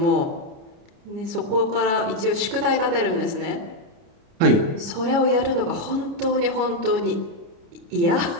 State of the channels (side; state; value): left; late; 29 ms